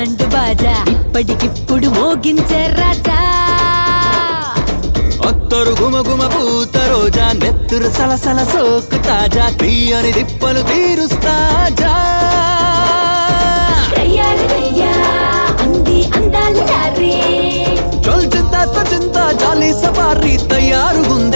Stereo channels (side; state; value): both; inverted; correlation -1.00